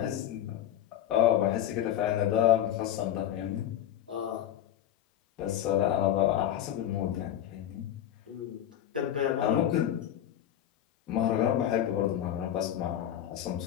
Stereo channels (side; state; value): right; quieter; 11.4 dB